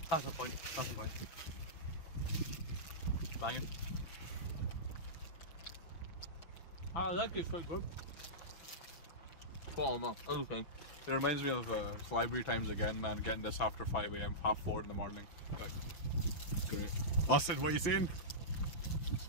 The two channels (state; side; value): late; right; 5.9 ms